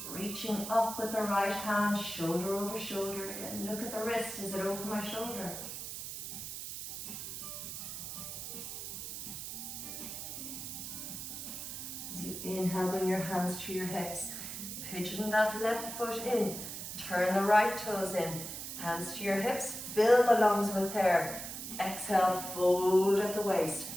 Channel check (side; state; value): right; noise; hiss, 7 dB below the sound